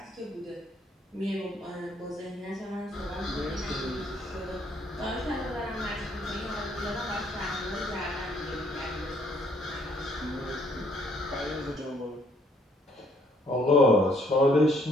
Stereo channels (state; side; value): normal; both; correlation 0.66